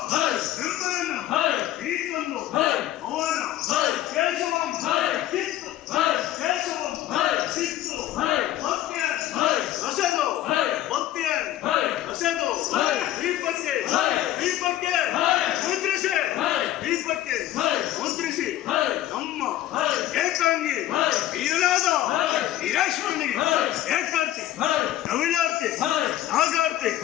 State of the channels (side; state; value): right; quieter; 13.6 dB